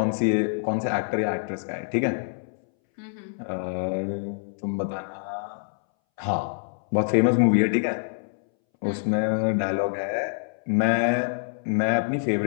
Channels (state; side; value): silent; right; 61 dB below the other